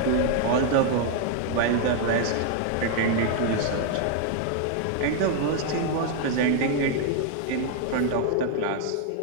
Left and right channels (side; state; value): both; different; correlation 0.00